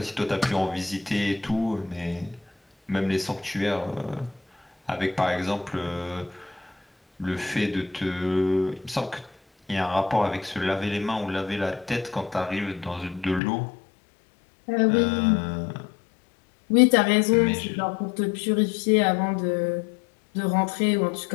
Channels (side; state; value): right; drops out; at 13.4 s